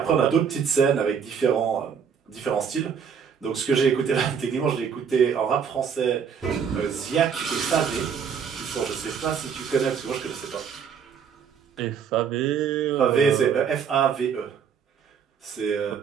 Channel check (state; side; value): quieter; left; 7.1 dB